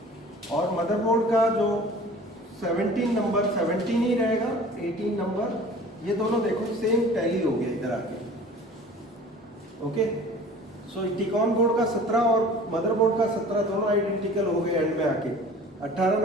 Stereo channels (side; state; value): both; normal; correlation 0.45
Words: और मदरबोर्ड का जो 17 नंबर 17 ही रहेगा, 18 नंबर, ये दोनों देखो सेम टैली हो गया इधर आके, ओके। सो टिकॉन बोर्ड का 17 और मदरबोर्ड का 17 दोनों आइडेंटिकल हो गए एंड में आके, 18